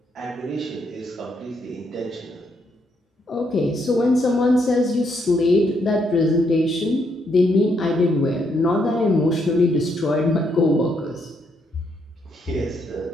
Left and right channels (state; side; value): normal; both; correlation 0.75